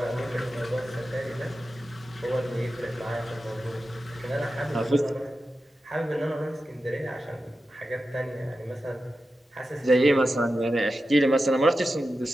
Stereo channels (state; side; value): normal; both; correlation 0.91